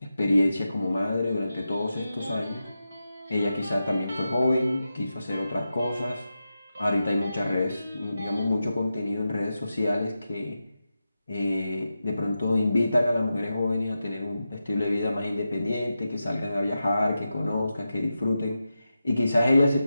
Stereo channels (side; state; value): both; inverted; correlation -0.90